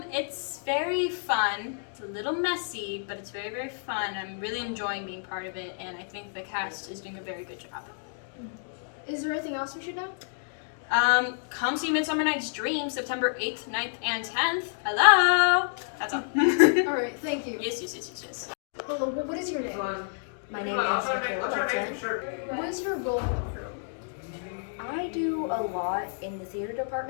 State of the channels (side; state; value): right; silent; digital silence